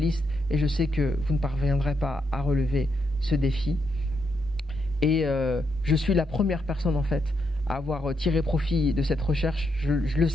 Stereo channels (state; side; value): normal; both; correlation 0.79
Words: et je sais que vous ne parviendrez pas à relever ce défi. Et je suis la première personne en fait à avoir tiré profit de cette recherche. Je le